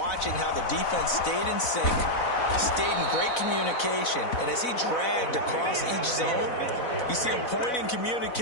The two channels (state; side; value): late; right; 4.0 ms